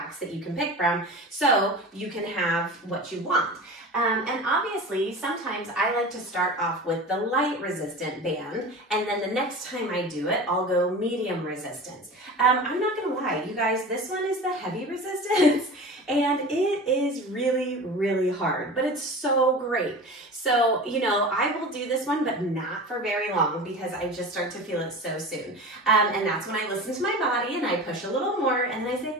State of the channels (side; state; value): both; normal; correlation 0.33